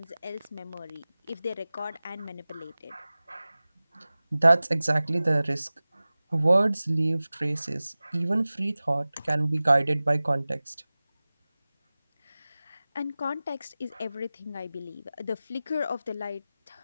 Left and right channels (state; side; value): inverted; both; correlation -0.98